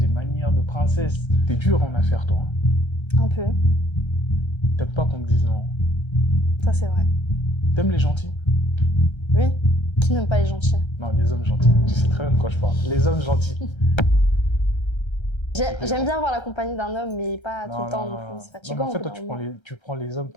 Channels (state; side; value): late; right; 1.3 ms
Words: manières de princesse. T'es dur en affaires, toi. Hein. Un peu. T'aimes pas qu'on te dise non. Ça, c'est vrai. T'aimes les gentils? Oui. Qui n'aime pas les gentils? Non, les hommes gentils. Tu sais très bien de quoi je parle. Les hommes gentils. J'aime bien avoir la compagnie d'un homme, mais pas tout le temps non plus. C'est Non, fatigant. mais en fait, toi, tu prends les hommes